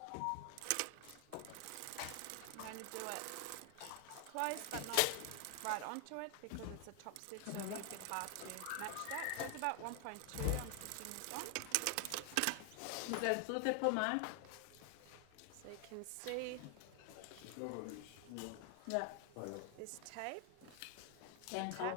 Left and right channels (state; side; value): different; both; correlation 0.00